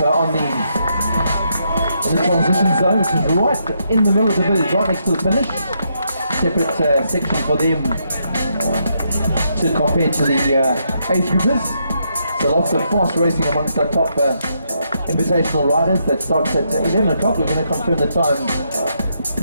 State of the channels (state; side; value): inverted; both; correlation -0.78